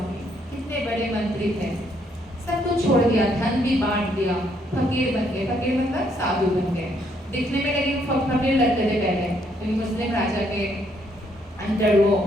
कितने बड़े मंत्री थे, सब कुछ छोड़ दिया, धन भी बांट दिया, फकीर बन गए। फकीर मतलब साधु बन गए। दिखने में लेकिन फकीर लगते थे पहले, क्योंकि मुस्लिम राजा के अंदर वो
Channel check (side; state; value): both; normal; correlation 0.71